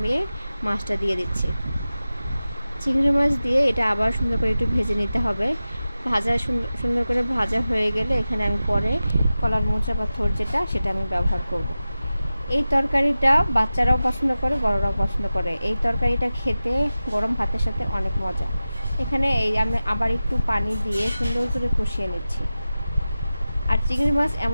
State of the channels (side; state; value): both; inverted; correlation -0.95